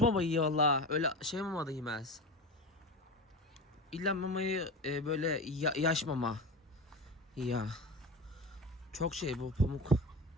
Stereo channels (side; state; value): both; normal; correlation 0.26